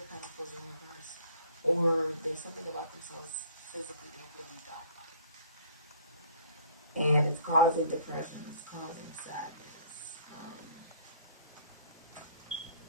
Pentacles in reverse, or there's something about themselves physically they really don't like. And it's causing depression, it's causing sadness,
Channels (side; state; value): both; inverted; correlation -0.56